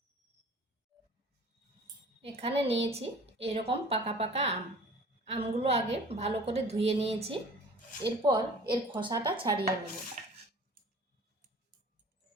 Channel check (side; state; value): both; normal; correlation 0.46